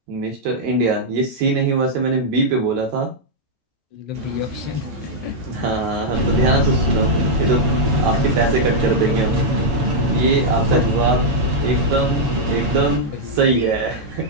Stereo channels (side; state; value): left; late; 7.1 ms